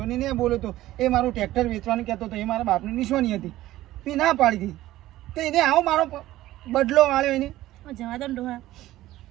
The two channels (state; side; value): quieter; left; 15.5 dB